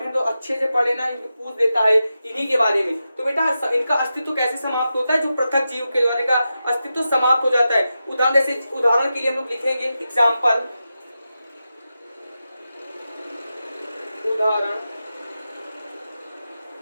तो अच्छे से पढ़े ना, इनको पूछ देता है इन्हीं के बारे में। तो बेटा इनका अस्तित्व कैसे समाप्त होता है? जो पृथक जीव के द्वारा का अस्तित्व समाप्त हो जाता है। उदाहरण के लिए हम लोग लिखेंगे एग्जाम्पल, उदाहरण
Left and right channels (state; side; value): inverted; both; correlation -0.90